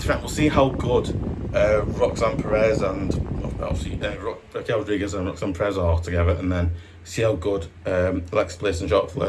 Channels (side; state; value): both; identical; correlation 1.00